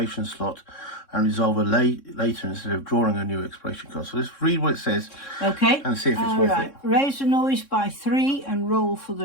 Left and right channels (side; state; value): right; late; 3.6 ms